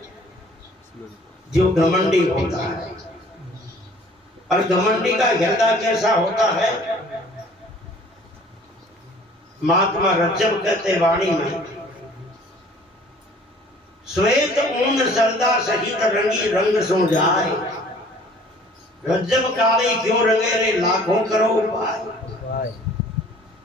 जो घमंडी होता है। और घमंडी का हृदय कैसा होता है, महात्मा रज्जब कहते वाणी में, श्वेत ऊन सरदा सहित रंगी रंग सो जाए, रज्जब काली क्यों रंगे रे लाखों करो उपाय।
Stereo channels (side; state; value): both; normal; correlation 0.52